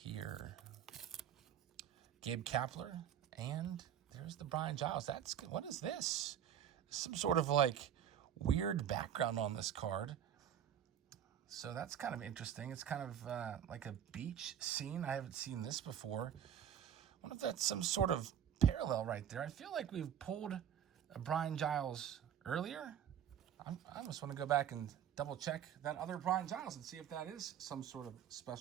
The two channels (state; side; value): quieter; left; 9.5 dB